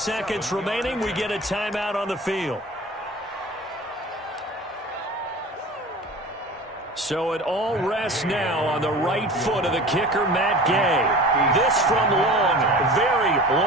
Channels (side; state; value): both; normal; correlation 0.38